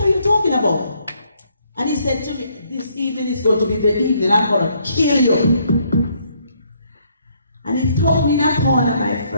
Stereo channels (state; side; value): inverted; both; correlation -0.69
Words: you talking about? And he said to me, this evening is going to be the evening I'm going to kill you. And he told me in a corner, my